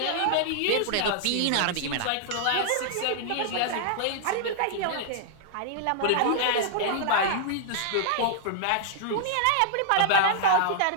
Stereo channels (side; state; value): both; different; correlation -0.01